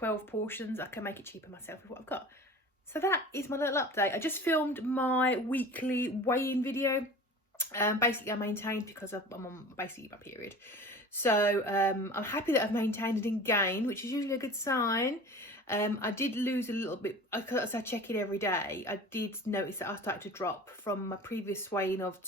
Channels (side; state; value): both; normal; correlation 0.39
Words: portions. I can make it cheaper myself with what I've got. So that is my little update. I just filmed my weekly weigh-in video. Basically I maintained because I'm on basically my period. So I'm happy that I've maintained and didn't gain, which is usually a good sign. I did lose a little bit, because I check it every day. I did notice that I started to drop from my previous weigh-in of